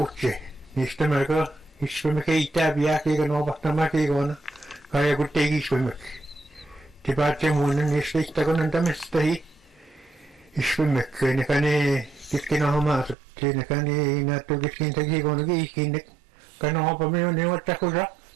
Niistä melko iskumme keittää piää kiikon opahtamaan kiikon. Kaja kun teki iskummeksi. Te päätte muinen niistä istakon antamista hii. Iskummekki, nekä ne kesken homaasut. Nekä ne näyttää keskentä kiikon kiikinne. Kana hopamme on ne ottakusa.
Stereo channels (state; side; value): drops out; left; at 13.2 s